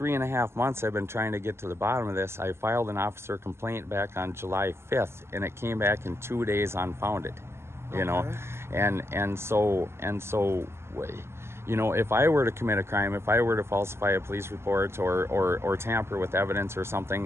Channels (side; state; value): left; late; 0.12 ms